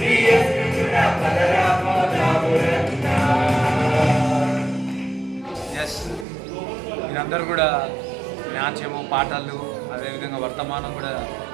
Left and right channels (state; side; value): drops out; left; at 6.2 s